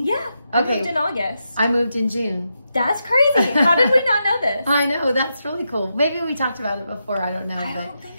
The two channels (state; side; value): inverted; both; correlation -0.85